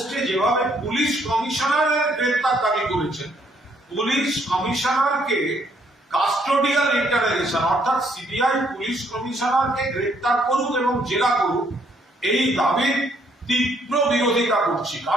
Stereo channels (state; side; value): normal; both; correlation 0.69